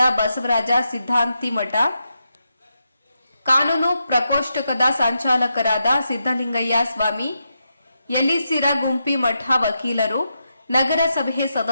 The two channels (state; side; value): inverted; both; correlation -0.85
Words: ಬಸವರಾಜ ಸಿದ್ಧಾಂತಿಮಠ, ಕಾನೂನು ಪ್ರಕೋಷ್ಠಕದ ಸಂಚಾಲಕರಾದ ಸಿದ್ದಲಿಂಗಯ್ಯ ಸ್ವಾಮಿ, ಯಲಿಸಿರ ಗುಂಪಿ ಮಠ ವಕೀಲರು, ನಗರಸಭೆ